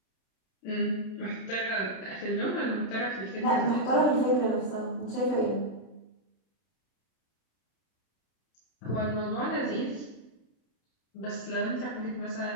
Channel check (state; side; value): late; right; 32 ms